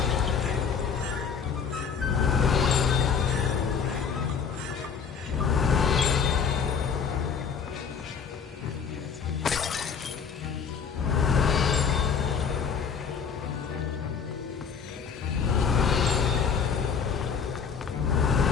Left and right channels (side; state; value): right; quieter; 6.4 dB